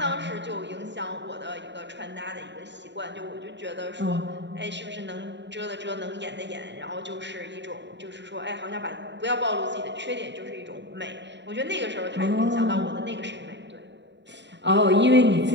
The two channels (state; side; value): late; left; 0.52 ms